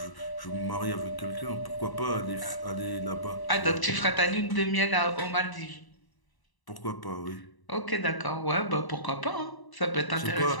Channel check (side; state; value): right; late; 1.0 ms